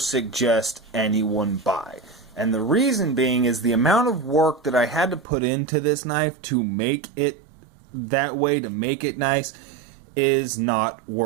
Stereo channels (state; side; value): drops out; left; at 5.2 s